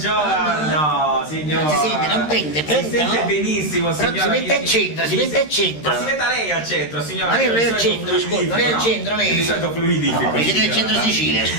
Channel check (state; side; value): late; right; 13 ms